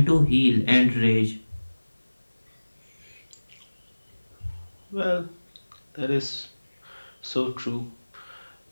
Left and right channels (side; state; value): both; inverted; correlation -1.00